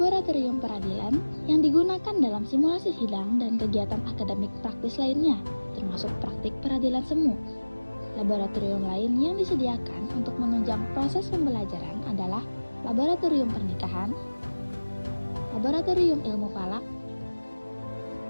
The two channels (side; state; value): both; inverted; correlation -1.00